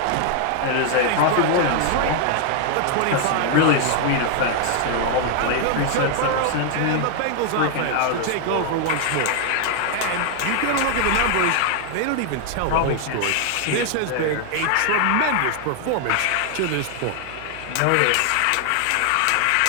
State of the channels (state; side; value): different; both; correlation 0.00